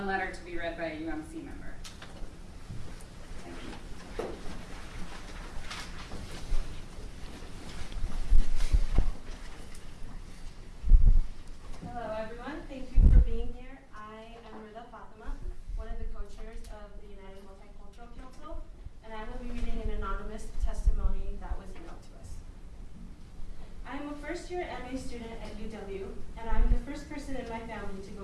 letter to be read by a UMC member. Thank you. Hello, everyone. Thank you for being here. I am Rida Fatima, one of the co-chairs of the United Multicultural Council, and I will be reading an anonymous testimony that was emailed to us. I am a first-year MA student at UW, and I'm the first person in my family to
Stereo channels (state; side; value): identical; both; correlation 1.00